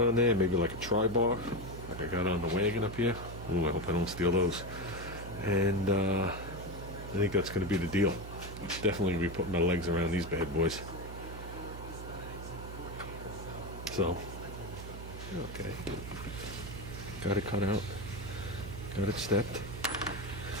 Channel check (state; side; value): noise; right; hum, 10 dB below the sound